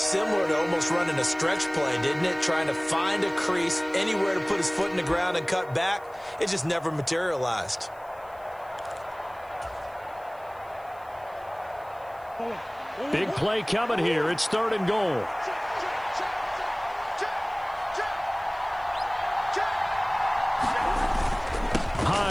to almost running a stretch play, didn't it? Trying to find a crease, anywhere to put his foot in the ground and cut back. It just never materialized. Big play coming here. It's 3rd and goal.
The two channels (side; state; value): right; noise; hiss, 28 dB below the sound